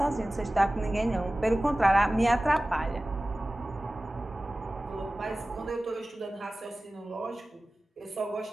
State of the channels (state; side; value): normal; both; correlation 0.97